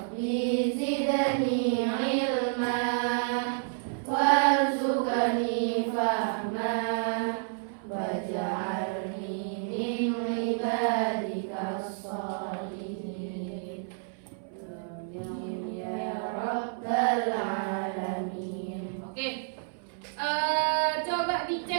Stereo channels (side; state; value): left; silent; 58 dB below the other